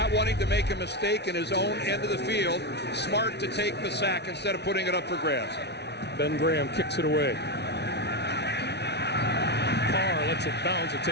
wanting to make a mistake in his own end of the field, smart to take the sack instead of putting it up for grabs. Ben Graham kicks it away. Carr lets it bounce. It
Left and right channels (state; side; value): late; right; 0.49 ms